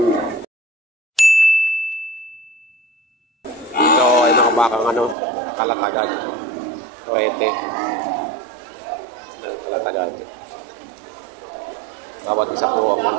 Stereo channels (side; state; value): left; drops out; at 5.2 s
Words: Bakang kalatagan, torete ng kalatagan. Bawat isa po ang